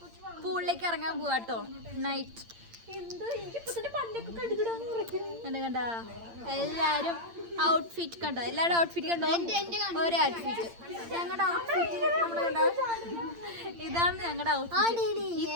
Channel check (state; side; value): late; left; 8.8 ms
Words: പൂളിലേക്ക് ഇറങ്ങാൻ പോവാട്ടോ. നൈറ്റ് കണ്ട എല്ലാരും ഔട്ട്ഫിറ്റ് കണ്ടോ? എല്ലാവരും ഔട്ട്ഫിറ്റ് കണ്ടോ? ഒരേ ഔട്ട്ഫിറ്റ്. ഞങ്ങളുടെ ഔട്ട്ഫിറ്റ് നമ്മുടെ കണ്ടോ? ഇതാണ് ഞങ്ങളുടെ